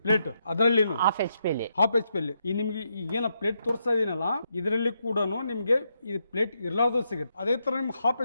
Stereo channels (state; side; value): inverted; both; correlation -0.81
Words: ಪ್ಲೇಟ್. ಅದರಲ್ಲಿ 1/2 HP ಅಲ್ಲಿ 1/2 HP ಅಲ್ಲಿ ಈ ನಿಮ್ಗೆ ಈಗೇನ ಪ್ಲೇಟ್ ತೋರಿಸ್ತಾ ಇದೀನಲ್ಲ, ಇದರಲ್ಲಿ ಕೂಡ ನಿಮ್ಗೆ ಇದು ಪ್ಲೇಟ್ ಇರ್ಲಾರ್ದು ಸಿಗುತ್ತೆ. ಅದೇ ತರ ನಿಮ್ಗೆ